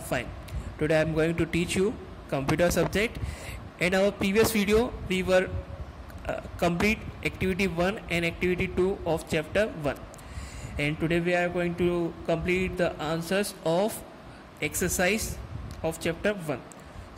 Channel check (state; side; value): identical; both; correlation 1.00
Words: fine. Today I am going to teach you computer subject. In our previous video, we were complete activity 1 and activity 2 of chapter 1. And today we are going to complete the answers of exercise of chapter 1.